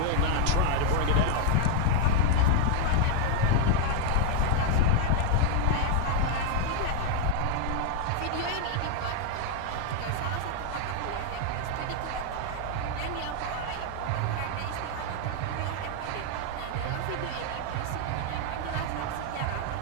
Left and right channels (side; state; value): both; different; correlation 0.00